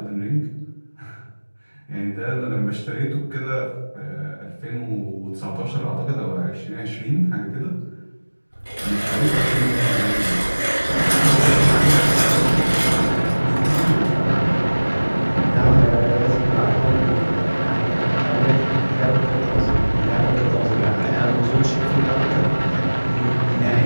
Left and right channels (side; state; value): both; inverted; correlation -1.00